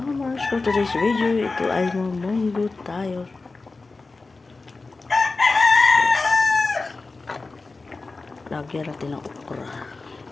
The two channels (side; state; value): right; quieter; 3.7 dB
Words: For today's video, ito ay mamunggo tayo. Lagyan natin ng okra.